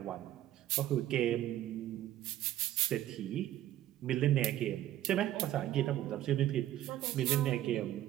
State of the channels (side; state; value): left; quieter; 13.0 dB